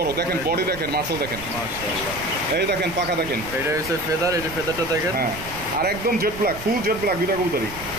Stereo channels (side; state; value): right; noise; rumble, 13 dB below the sound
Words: দেখেন বডি দেখেন, মাসল দেখেন, মাশাআল্লাহ। এই দেখেন পাখা দেখেন। এটা হচ্ছে ফেদার, এই যে ফেদারটা দেখেন। হ্যাঁ, আর একদম jet black, full jet black দুইটা কবুতরই।